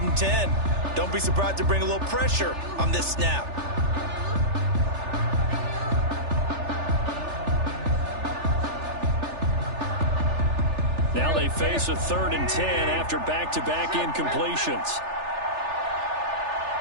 10. Don't be surprised to bring a little pressure on this snap. Now they face a 3rd and 10 after back-to-back incompletions.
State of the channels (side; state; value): left; late; 3.4 ms